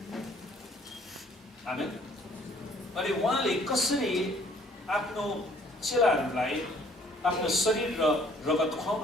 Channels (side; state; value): both; normal; correlation 0.60